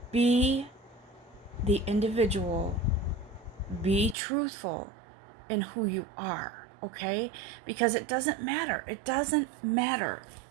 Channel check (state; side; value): drops out; left; at 4.2 s